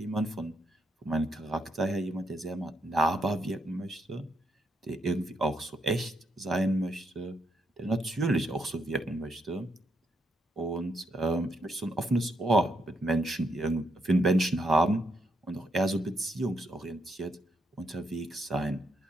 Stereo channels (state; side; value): normal; both; correlation 0.77